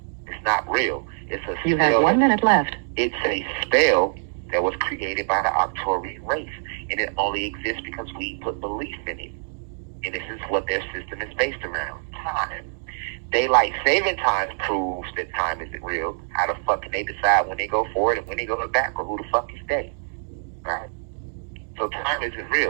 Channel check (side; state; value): left; silent; digital silence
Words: It's not real. It's a spell. You have 1 minute left. It's a spell that was created by the Arcturian race. And it only exists because we put belief in it. And this is what their system is based around. Time. Daylight saving time proves that time isn't real. How the fuck can they decide when they go forward and when they go back, or who the fuck is they? Right? So time isn't